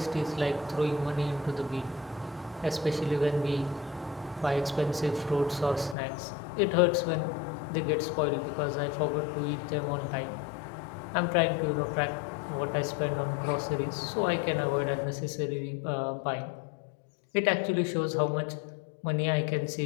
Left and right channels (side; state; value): right; drops out; at 6.0 s